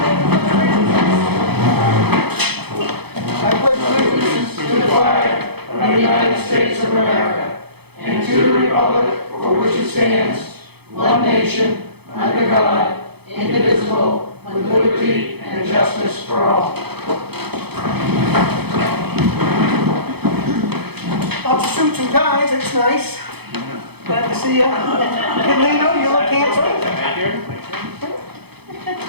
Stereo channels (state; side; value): late; left; 0.98 ms